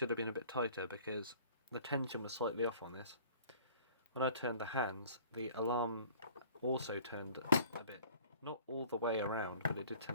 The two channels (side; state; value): both; inverted; correlation -0.51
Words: have been a bit tighter because the tension was slightly off on this. When I turned the hands, the alarm also turned a bit. Not all the way around, but it did